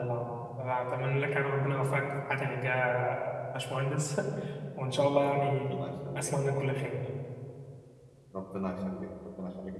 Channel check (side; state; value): both; identical; correlation 1.00